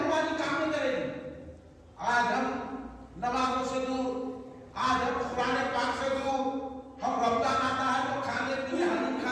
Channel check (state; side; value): identical; both; correlation 1.00